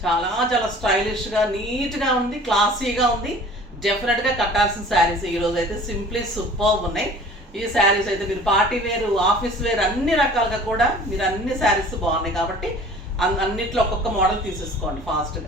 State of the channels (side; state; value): both; normal; correlation 0.46